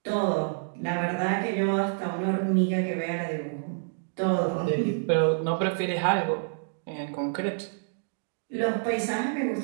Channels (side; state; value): left; silent; digital silence